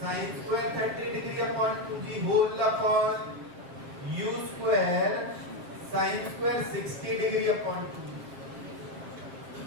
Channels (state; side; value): late; left; 7.7 ms